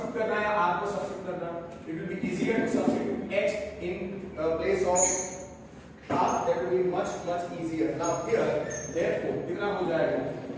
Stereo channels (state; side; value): identical; both; correlation 1.00